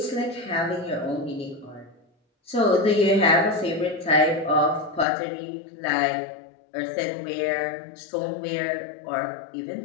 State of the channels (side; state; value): right; drops out; at 5.1 s